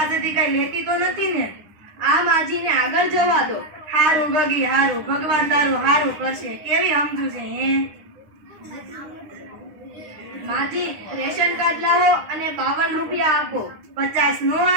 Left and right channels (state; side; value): late; left; 9.9 ms